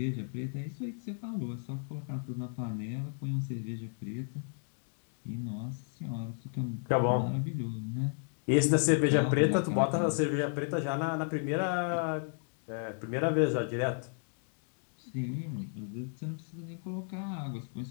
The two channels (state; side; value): silent; right; 55 dB below the other